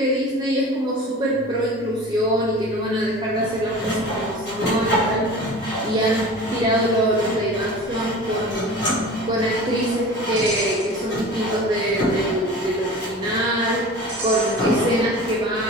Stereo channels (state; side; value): normal; both; correlation 0.38